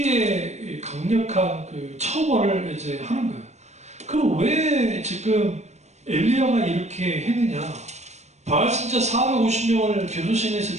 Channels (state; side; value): late; left; 0.33 ms